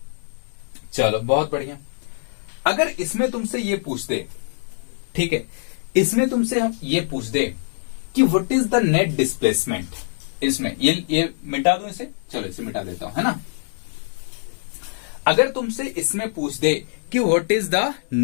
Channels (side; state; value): right; silent; digital silence